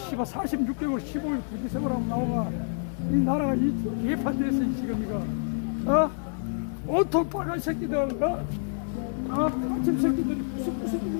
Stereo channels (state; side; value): silent; right; 60 dB below the other